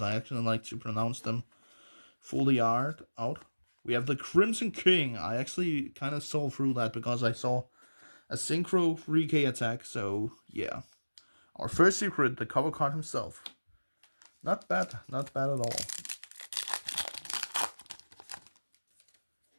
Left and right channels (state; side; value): inverted; both; correlation -1.00